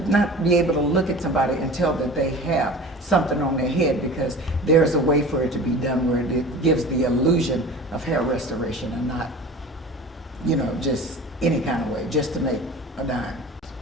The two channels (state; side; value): normal; both; correlation 0.38